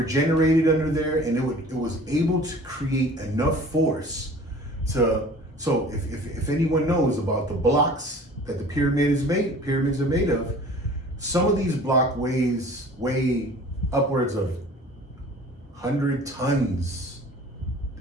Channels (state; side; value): normal; both; correlation 0.46